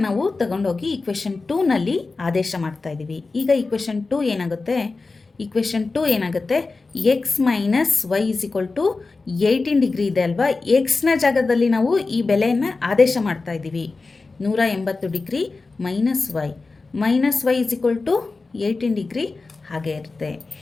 ನಾವು ತಗೊಂಡೋಗಿ ಈಕ್ವೇಷನ್ 2ನಲ್ಲಿ ಆದೇಶ ಮಾಡ್ತಾ ಇದ್ದೀವಿ. ಈಗ ಈಕ್ವೇಷನ್ 2 ಏನಾಗುತ್ತೆ, ಈಕ್ವೇಷನ್ 2 ಏನಾಗುತ್ತೆ, x minus y is equal to 18 degree ಇದೆ ಅಲ್ವಾ. ಎಕ್ಸ್ನ ಜಾಗದಲ್ಲಿ ನಾವು ಈ ಬೆಲೆಯನ್ನು ಆದೇಶ ಮಾಡ್ತಾ ಇದ್ದೀವಿ. 180 degree minus y is equal to 18 degree ಹಾಗೆ ಇರುತ್ತೆ.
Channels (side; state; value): right; quieter; 3.8 dB